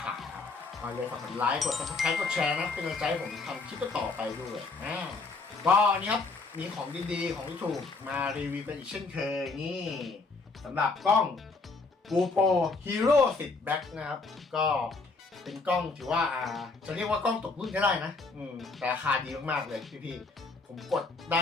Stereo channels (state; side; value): quieter; right; 3.9 dB